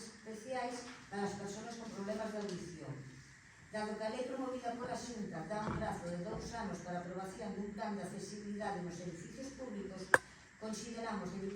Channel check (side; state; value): both; identical; correlation 1.00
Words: para as persoas con problemas de audición. Dado que a lei promovida pola Xunta dá un prazo de 2 anos para a aprobación dun plan de accesibilidade nos edificios públicos, consideramos de